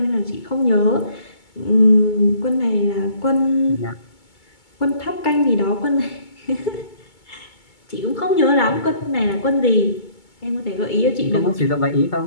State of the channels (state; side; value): late; right; 2.2 ms